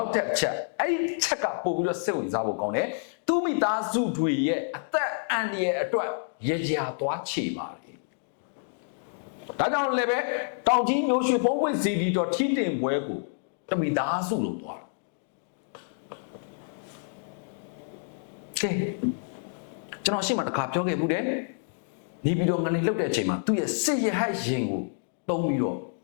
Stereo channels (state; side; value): silent; right; digital silence